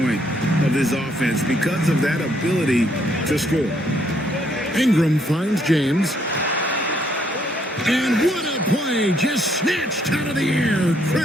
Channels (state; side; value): normal; both; correlation 0.70